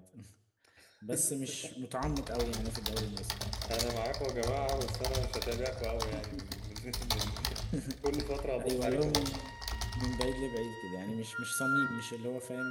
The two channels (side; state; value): both; identical; correlation 1.00